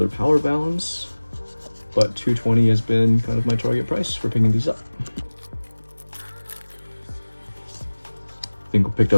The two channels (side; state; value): both; inverted; correlation -1.00